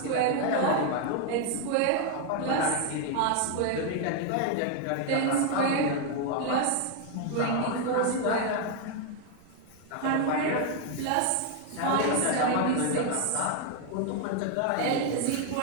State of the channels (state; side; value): different; both; correlation 0.01